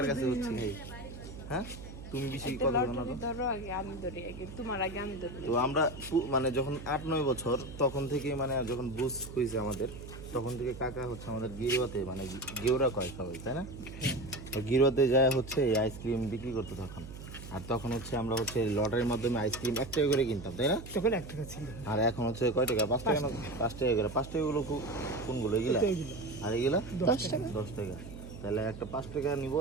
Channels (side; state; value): right; noise; hum, 13 dB below the sound